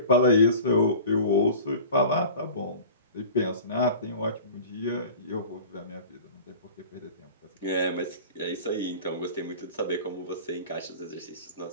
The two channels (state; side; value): inverted; both; correlation -0.40